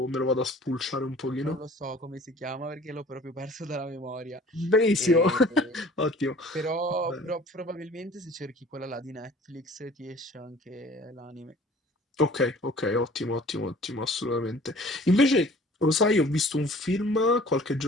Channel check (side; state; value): both; normal; correlation 0.50